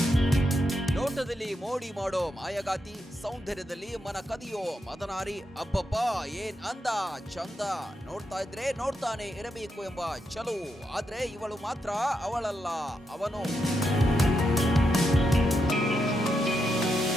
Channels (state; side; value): normal; both; correlation 0.83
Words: ನೋಟದಲ್ಲಿ ಮೋಡಿ ಮಾಡೋ ಮಾಯಗಾತಿ, ಸೌಂದರ್ಯದಲ್ಲಿ ಮನ ಕದಿಯೋ ಮದನಾರಿ. ಅಬ್ಬಬ್ಬ ಏನ್ ಅಂದ ಚಂದ, ನೋಡ್ತಾ ಇದ್ರೆ ನೋಡ್ತಾನೆ ಇರಬೇಕು ಎಂಬ ಚಲುವು. ಆದ್ರೆ ಇವಳು ಮಾತ್ರ ಅವಳಲ್ಲ, ಅವನು.